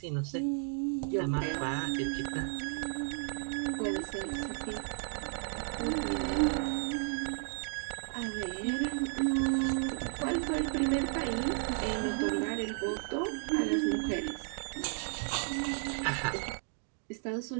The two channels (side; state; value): left; silent; 55 dB below the other